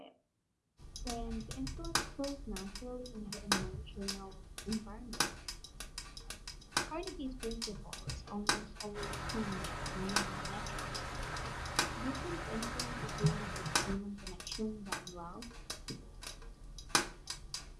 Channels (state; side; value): identical; both; correlation 1.00